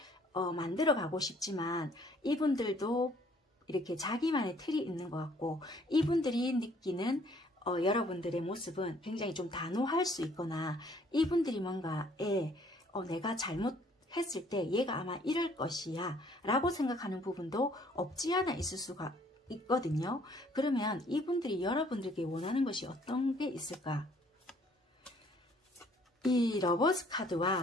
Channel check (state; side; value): normal; both; correlation 0.61